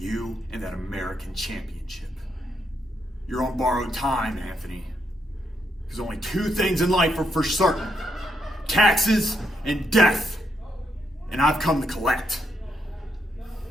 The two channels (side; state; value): both; normal; correlation 0.78